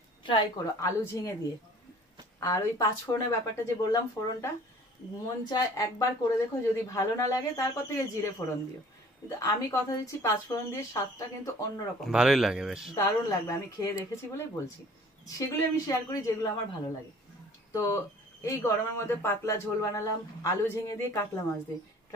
ট্রাই করো আলু ঝিঙে দিয়ে। আর ওই 5 ফোড়নের ব্যাপারটা যে বললাম, ফোড়নটা মন চায় একবার করে দেখো, যদি ভালো না লাগে তারপর থেকে জিরে ফোড়ন দিও। কিন্তু আমি কথা দিচ্ছি 5 ফোড়ন দিয়ে স্বাদটা কিন্তু অন্যরকম, ভালোই লাগে বেশ, দারুণ লাগবে। আমি খেয়ে দেখেছি বলেই বলছি, সেগুলো আমি শেয়ার করি যেগুলো আমার ভালো লাগে। তো এই গরমের মধ্যে পাতলা ঝোল বানালাম আলু ঝিঙে দিয়ে, কাতলা মাছ দিয়ে।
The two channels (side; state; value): both; normal; correlation 0.51